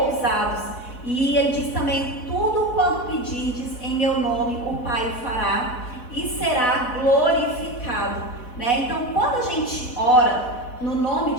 ousados. E ele diz também, tudo quanto pedirdes em meu nome, o Pai fará e será glorificado, né? Então, quando a gente ora no nome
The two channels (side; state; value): right; late; 4.1 ms